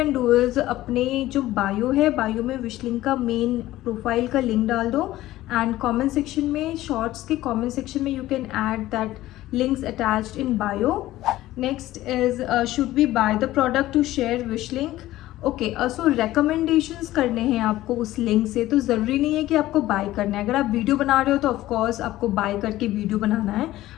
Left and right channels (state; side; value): quieter; right; 15.7 dB